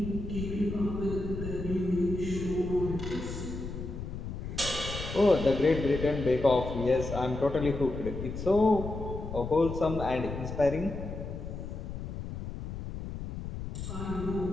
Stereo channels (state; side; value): noise; left; rumble, 7 dB below the sound